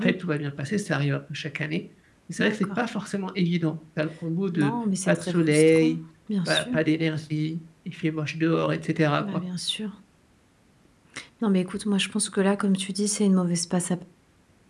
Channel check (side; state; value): both; identical; correlation 1.00